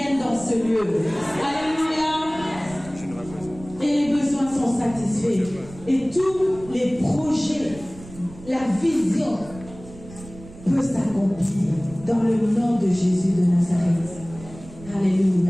dans ce lieu. Alléluia. la vision peut s'accomplir dans le nom de Jésus de Nazareth.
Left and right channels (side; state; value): right; noise; rumble, 18 dB below the sound